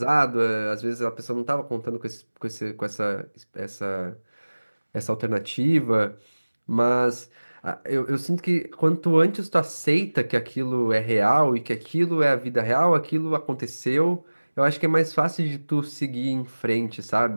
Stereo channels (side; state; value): both; inverted; correlation -1.00